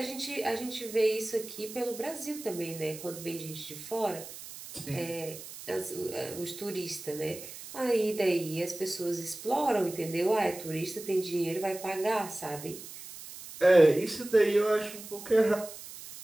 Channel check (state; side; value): noise; right; hiss, 13 dB below the sound